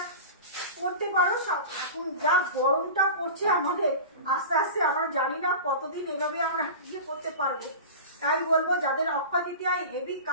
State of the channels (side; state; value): both; inverted; correlation -0.32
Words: পরতে পারো। এখন যা গরমটা পড়ছে আমাদের, আস্তে আস্তে আমরা জানি না কতদিন এভাবে আমরা ইয়ে করতে পারবো। তাই বলবো যাদের অক্ষয় তৃতীয়ায় হেভি